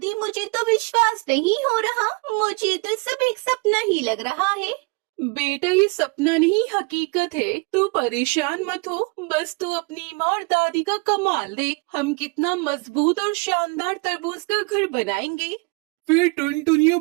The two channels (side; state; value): left; quieter; 29.2 dB